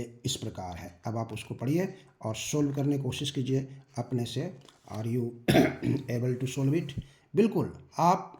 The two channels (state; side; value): identical; both; correlation 1.00